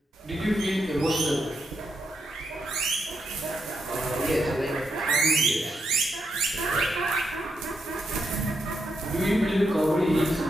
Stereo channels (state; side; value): normal; both; correlation 0.82